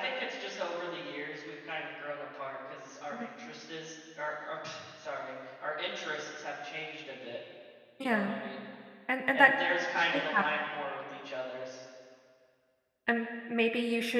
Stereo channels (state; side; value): identical; both; correlation 1.00